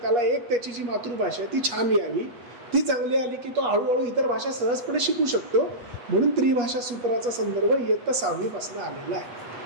त्याला एक त्याची जी मातृभाषा आहे ती छान यावी ती चांगली आली की तो हळूहळू इतर भाषा सहजपणे शिकू शकतो. म्हणून त्रिभाषा सूत्राचा संदर्भ इयत्ता 6वी पासून आलेला आहे.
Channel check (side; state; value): left; late; 8.3 ms